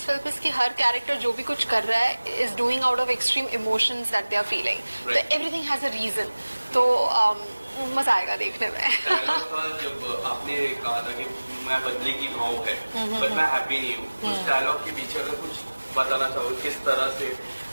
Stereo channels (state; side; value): inverted; both; correlation -1.00